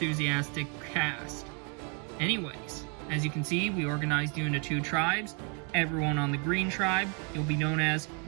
cast. Anyways, as you can see, we organized you into 2 tribes. Everyone on the green tribe, you'll be known as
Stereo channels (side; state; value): left; quieter; 37.0 dB